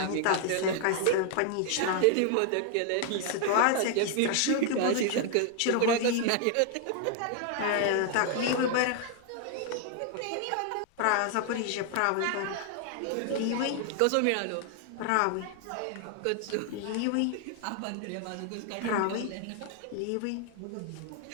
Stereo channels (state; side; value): different; both; correlation 0.00